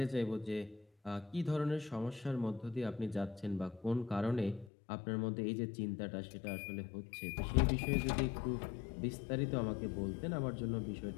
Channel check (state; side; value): drops out; right; at 4.7 s